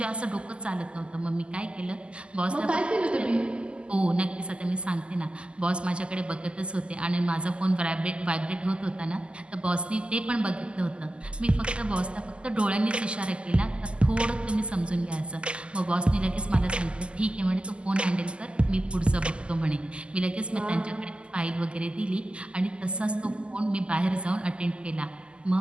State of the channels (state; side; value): late; left; 0.052 ms